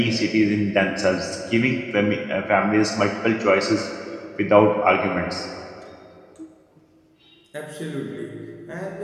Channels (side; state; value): both; identical; correlation 1.00